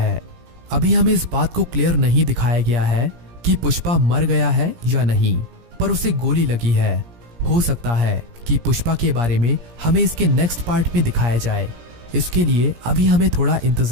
अभी हमें इस बात को क्लियर नहीं दिखाया गया है कि पुष्पा मर गया है या नहीं, पर उसे गोली लगी है। हो सकता है कि पुष्पा के बारे में हमें इसके नेक्स्ट पार्ट में दिखाया जाए। इसके लिए अभी हमें थोड़ा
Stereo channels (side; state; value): left; late; 17 ms